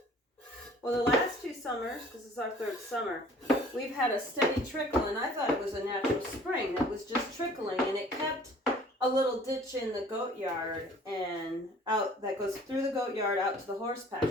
Well, the last 2 summers, because this is our 3rd summer, we've had a steady trickle, and I thought it was a natural spring that was just trickling, and it kept a little ditch in the goat yard and out that goes through the goat yard out to the horse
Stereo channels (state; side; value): normal; both; correlation 0.52